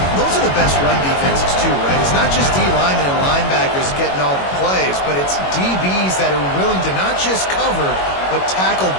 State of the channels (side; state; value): right; late; 21 ms